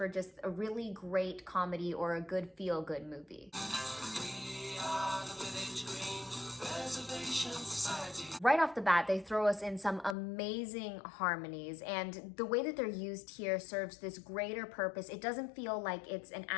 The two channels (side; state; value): right; drops out; at 10.2 s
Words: just a really great comedy or a good feel-good movie. We are the Village Green Preservation Society. Right off the bat, they throw us in some amazing harmonies, and the way that they're used here serves this greater purpose. It doesn't feel like it's an